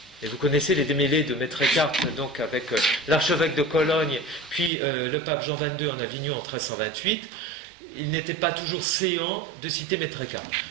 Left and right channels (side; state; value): left; drops out; at 4.7 s